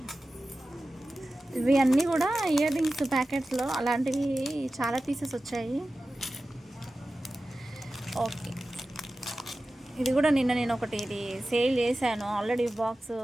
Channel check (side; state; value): both; normal; correlation 0.95